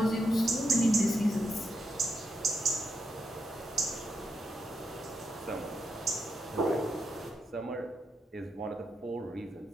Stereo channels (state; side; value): normal; both; correlation 0.83